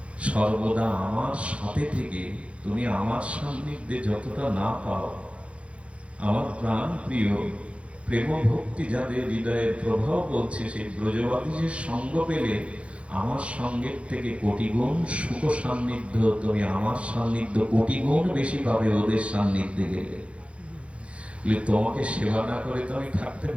সর্বদা আমার সাথে থেকে তুমি আমার সান্নিধ্যে যতটা না পাও, আমার প্রাণ প্রিয় প্রেম ভক্তি যাদের হৃদয়ের প্রভাব বলছে, সেই ব্রজবাদীদের সঙ্গ পেলে আমার সঙ্গের থেকে কোটি গুণ সুখ সান্নিধ্য, তুমি আমার সান্নিধ্য কোটি গুণ বেশি পাবে ওদের সান্নিধ্যে গেলে। তোমাকে সেবা না করে তো আমি থাকতে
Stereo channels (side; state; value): left; late; 0.061 ms